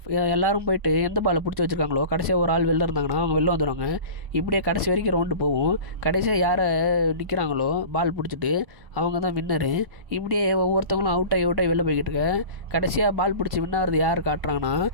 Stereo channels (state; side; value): late; left; 1.1 ms